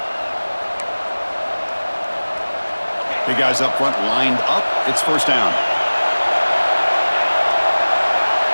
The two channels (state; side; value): inverted; both; correlation -1.00